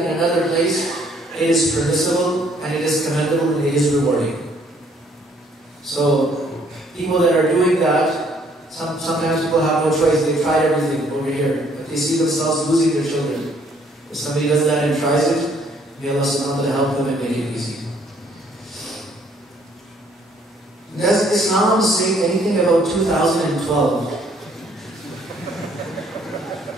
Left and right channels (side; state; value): both; normal; correlation 0.64